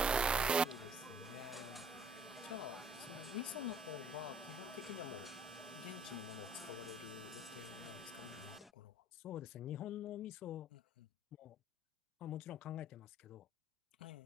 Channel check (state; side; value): normal; both; correlation 0.58